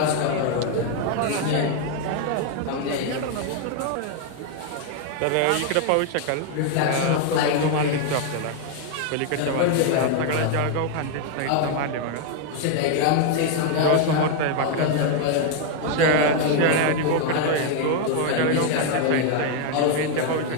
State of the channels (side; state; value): both; different; correlation 0.00